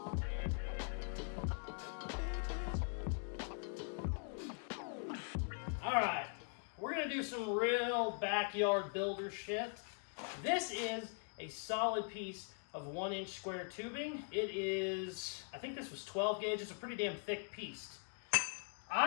All right, we're going to do some real backyard builder shit. This is a solid piece of 1-inch square tubing. It is, I think this was 12 gauge. It's a pretty damn thick piece.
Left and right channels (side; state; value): right; silent; 50 dB below the other